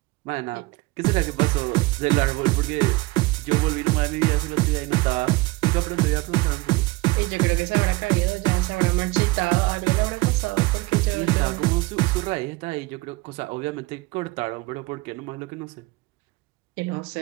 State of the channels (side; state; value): left; quieter; 22.0 dB